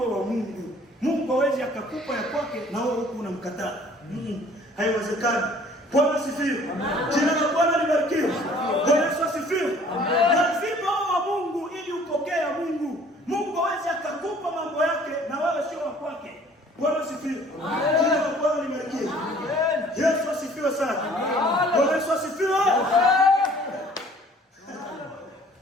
wa Mungu. Mungu hawezi akakupa ya kwake na wewe huko unamkataa. Haiwezekani. Bwana asifiwe. Jina la Bwana libarikiwe. Bwana asifiwe. Lazima uwe wa Mungu ili upokee ya Mungu. Mungu hawezi akakupa mambo yake na wewe sio wa kwake. Bwana asifiwe. Jina la Bwana libarikiwe. Yesu asifiwe sana. Bwana asifiwe.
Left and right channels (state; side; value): normal; both; correlation 0.54